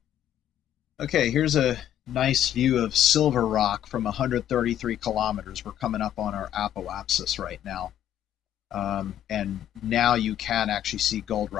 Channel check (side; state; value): right; quieter; 11.1 dB